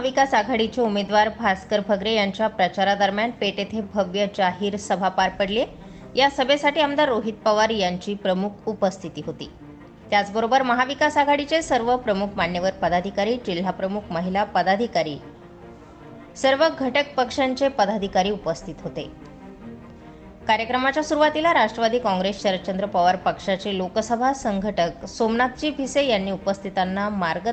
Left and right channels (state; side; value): identical; both; correlation 1.00